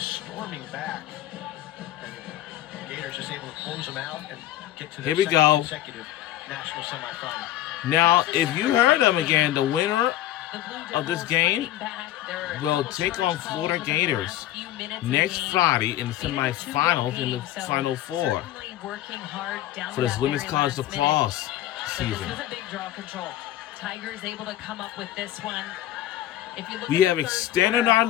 back. And the Gators just able to close them out and get to their Here we second go. consecutive national semifinal. Now, if you heard them again, the winner of this game will take on Florida Gators next Friday in the semifinals in the Final Four for this women's college lacrosse season. This was a big draw control. Tigers able to come up with this one. If you look We at have the third extended quarter, our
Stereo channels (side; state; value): right; quieter; 13.7 dB